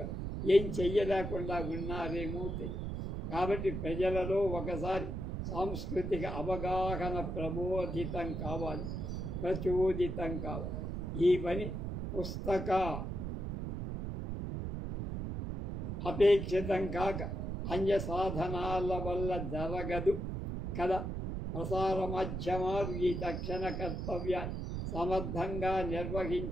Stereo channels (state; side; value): noise; right; rumble, 4 dB below the sound